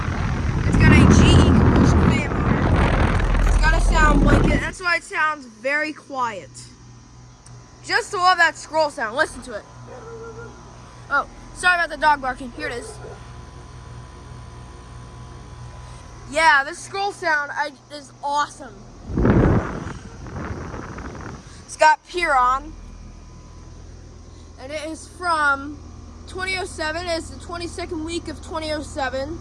It's got a GE commercial fan motor. It's got a sound blanket. That's why it sounds very quiet. Just to love that scroll sound. Listen to it. Oh, sorry about the dog barking. Here it is. Yeah, this scroll sound is awesome. It's got Piron, and it is from 2007. It's the 22nd week of 2007.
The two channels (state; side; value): identical; both; correlation 1.00